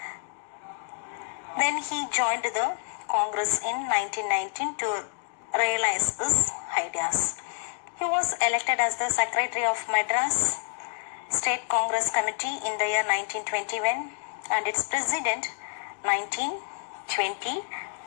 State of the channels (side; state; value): right; silent; digital silence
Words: Then he joined the Congress in 1919 to realize his ideas. He was elected as the Secretary of Madras State Congress Committee in the year 1921 and its President